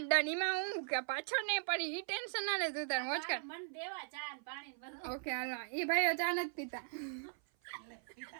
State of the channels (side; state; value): left; silent; 52 dB below the other